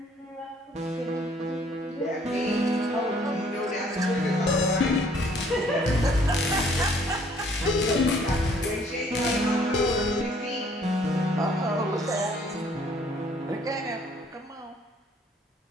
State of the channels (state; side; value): normal; both; correlation 0.61